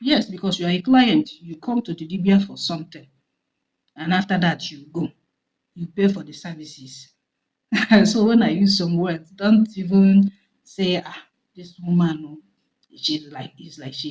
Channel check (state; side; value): identical; both; correlation 1.00